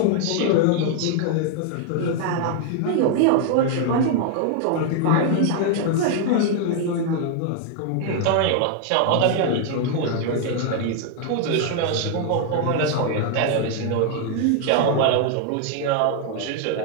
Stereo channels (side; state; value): both; different; correlation 0.00